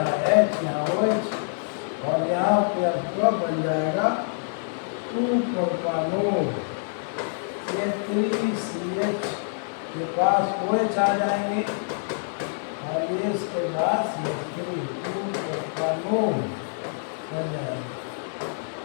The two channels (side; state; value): right; silent; digital silence